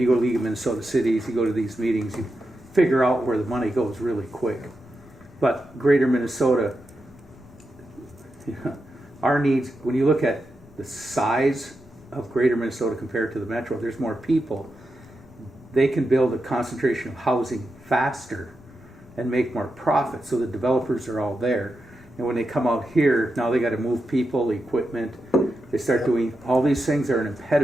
go to League of Minnesota Cities, you go to these meetings, you figure out where the money goes really quick. But Greater Minnesota, our needs, when you look at the size of Greater Minnesota compared to the Metro, there's more people. They can build a concentration of housing faster and make more profit, so the developers are all there. And when they come out here, now they got to move people, equipment. They start doing all these things are an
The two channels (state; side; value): noise; left; rumble, 26 dB below the sound